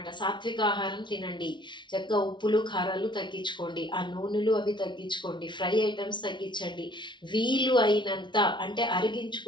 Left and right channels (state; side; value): late; right; 0.23 ms